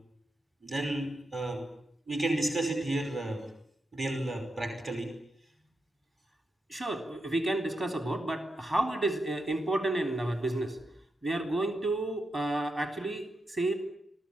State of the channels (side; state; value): both; normal; correlation 0.86